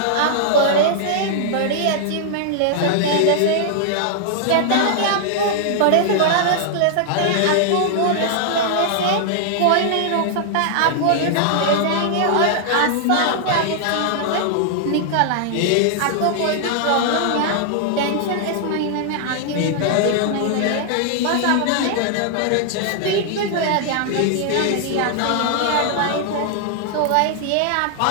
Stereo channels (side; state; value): both; different; correlation -0.01